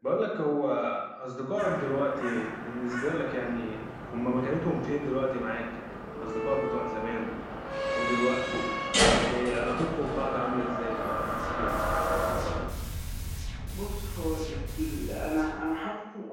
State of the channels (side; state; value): both; identical; correlation 1.00